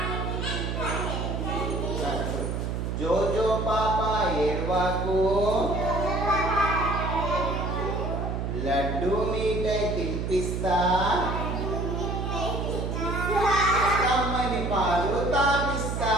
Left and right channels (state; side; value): noise; right; hum, 2 dB below the sound